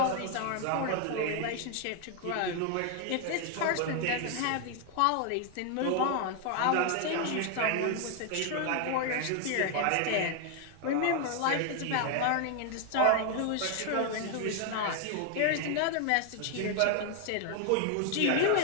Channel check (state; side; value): different; both; correlation 0.00